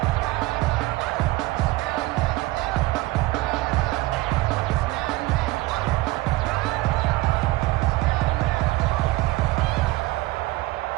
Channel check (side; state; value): left; quieter; 19.4 dB